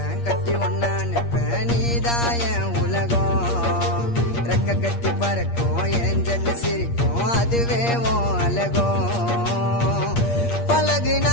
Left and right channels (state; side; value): late; right; 8.5 ms